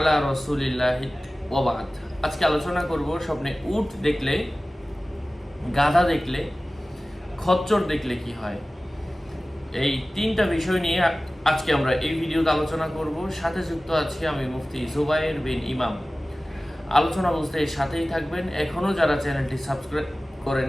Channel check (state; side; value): normal; both; correlation 0.97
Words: রাসূলিল্লাহি ওয়া বা'দ। আজকে আলোচনা করব স্বপ্নে উট দেখলে, গাধা দেখলে, খচ্চর দেখলে কি হয়। এই তিনটা বিষয় নিয়ে আজকে আমরা এই ভিডিওতে আলোচনা করব। সাথে যুক্ত আছি আমি মুফতি জুবায়ের বিন ইমাম। আলোচনা বুঝতে সাথেই থাকবেন। এখনো যারা চ্যানেলটি সাবস্ক্রাইব